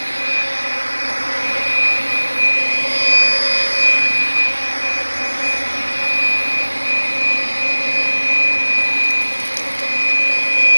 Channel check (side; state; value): both; inverted; correlation -1.00